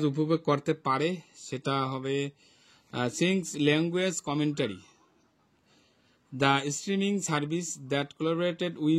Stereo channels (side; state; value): both; identical; correlation 1.00